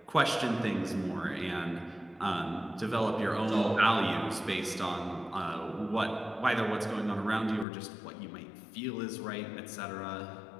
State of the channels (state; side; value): drops out; right; at 7.7 s